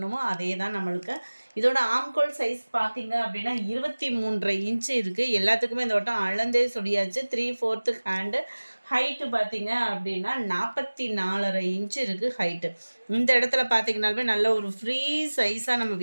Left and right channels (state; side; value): inverted; both; correlation -1.00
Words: அதே தான் நம்மளுக்கு. இதோட ஆம்கோல் சைஸ் பார்த்தீங்க அப்படின்னா 23.5 இன்ச்சு இருக்குது. எல்லாத்துக்குமே இந்த வட்டம் அளந்தே சொல்லியாச்சு. 3/4 ஹேண்டு. ஹைட்டு பார்த்தீங்க அப்படின்னா 44.5 இன்ச்சு இருக்குது ஹைட்டு. இந்த இடத்துல பார்த்தீங்கன்னாலுமே நல்ல ஒரு ஃப்ரீ சைஸாக நம்ம